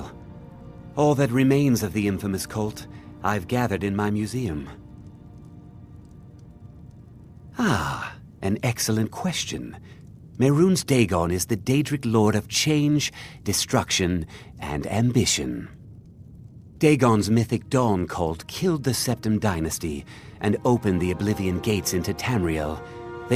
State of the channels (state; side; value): identical; both; correlation 1.00